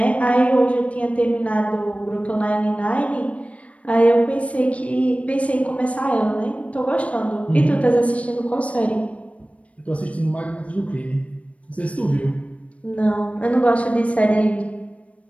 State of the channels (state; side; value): late; right; 0.065 ms